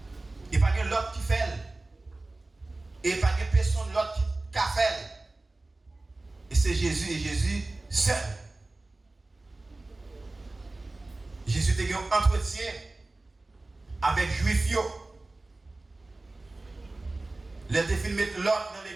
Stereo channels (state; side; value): quieter; left; 3.0 dB